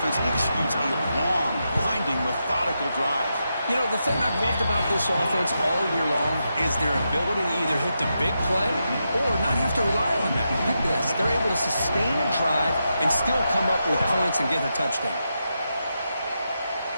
executes a long, grinding, methodical drive. You know, the thing I've loved about this offense all year long is their ability to either hit the big play or not have to rely on that. Look at this. They're able to sustain a drive and still come up with points and get a touchdown.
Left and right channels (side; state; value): both; inverted; correlation -0.86